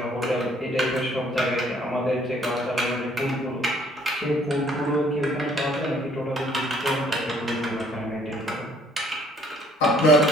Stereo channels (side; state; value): both; normal; correlation 0.60